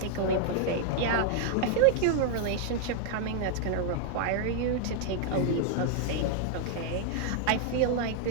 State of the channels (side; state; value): both; different; correlation 0.00